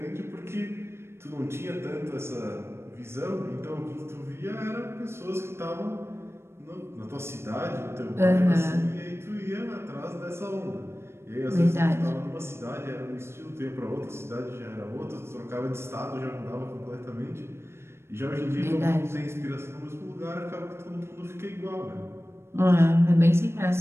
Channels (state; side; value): late; left; 0.12 ms